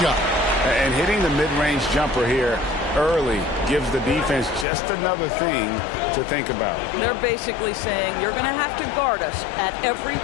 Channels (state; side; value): drops out; right; at 4.7 s